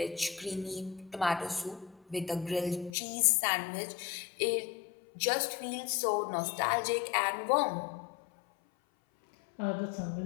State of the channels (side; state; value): right; drops out; at 3.0 s